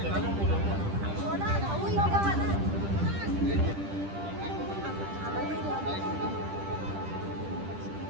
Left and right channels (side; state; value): left; late; 10 ms